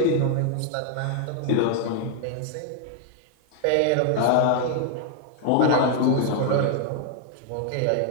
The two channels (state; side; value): different; both; correlation 0.00